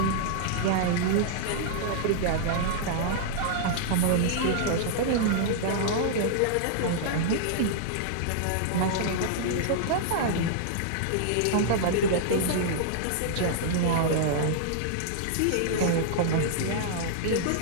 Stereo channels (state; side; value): different; both; correlation -0.01